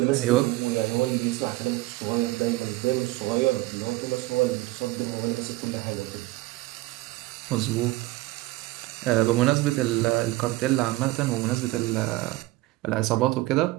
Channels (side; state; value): left; quieter; 19.2 dB